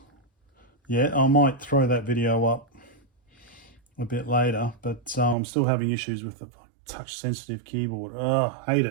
yet. I might throw that video up a bit later, but I'm still having issues with the touch sensitive keyboard. Hate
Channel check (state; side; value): drops out; left; at 5.4 s